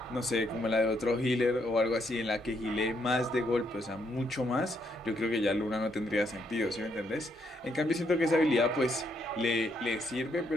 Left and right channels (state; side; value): normal; both; correlation 0.75